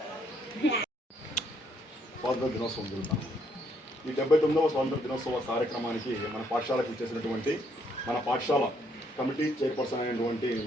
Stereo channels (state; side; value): normal; both; correlation 0.70